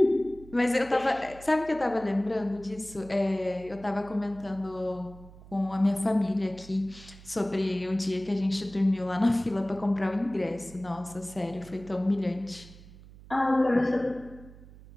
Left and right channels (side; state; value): right; noise; hum, 20 dB below the sound